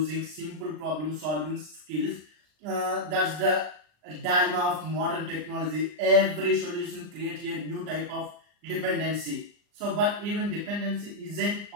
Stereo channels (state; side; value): late; left; 39 ms